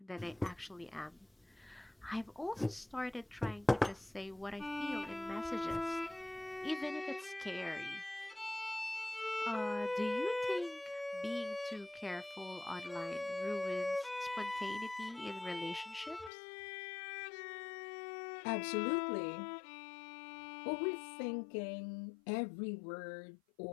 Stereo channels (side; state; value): right; drops out; at 16.3 s